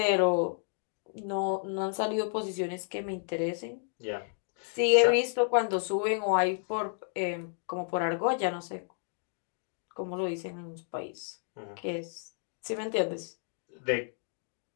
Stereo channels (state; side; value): silent; right; digital silence